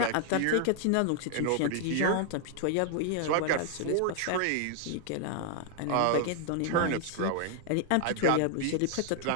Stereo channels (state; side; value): different; both; correlation 0.00